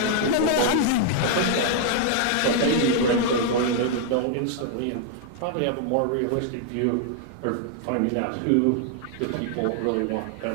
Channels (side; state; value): both; different; correlation 0.00